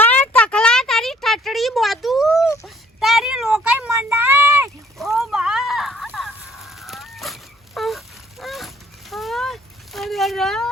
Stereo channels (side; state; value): both; normal; correlation 0.60